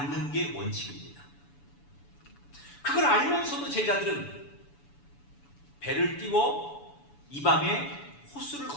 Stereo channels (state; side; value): late; right; 7.0 ms